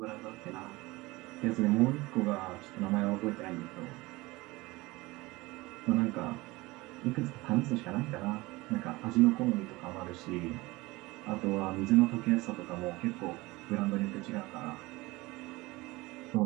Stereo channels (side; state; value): left; quieter; 21.4 dB